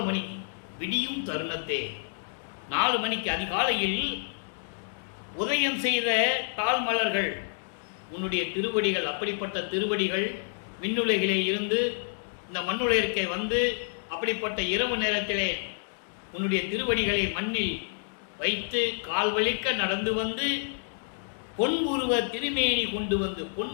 மணிக்கு விடியும் தருணத்தே 4 மணிக்கு அதிகாலையில் உதயம் செய்த தாழ்மலர்கள் உன்னுடைய திருவடிகள். அப்படிப்பட்ட திருவடிகள் விண்ணுலகிலே இருந்து இந்த மண்ணுலகிற்கே வந்து அப்படிப்பட்ட இரவு நேரத்திலே உன்னுடைய திருவடிகளை மண்ணில் வைத்து கால் வலிக்க நடந்து வந்து பொன் உருவ திருமேனி கொண்டு வந்து, பொன்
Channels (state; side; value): silent; right; digital silence